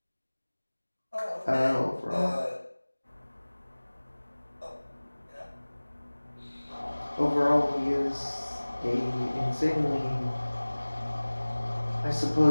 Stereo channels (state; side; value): inverted; both; correlation -1.00